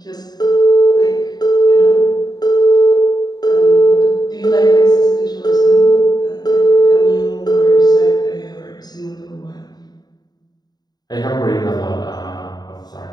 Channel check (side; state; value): right; late; 0.20 ms